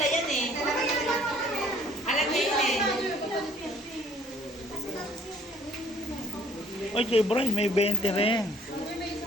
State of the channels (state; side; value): normal; both; correlation 0.59